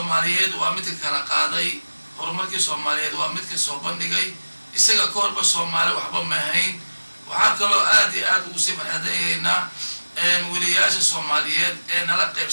وامتك كرقادي هرمك الصوماليين وامتك صوبندقي isaga koorba Soomaali waxba ma hayn waxa kale aad ugu sii farxadayna waliyaasha Soomaaliyeed ee nala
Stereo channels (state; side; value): inverted; both; correlation -1.00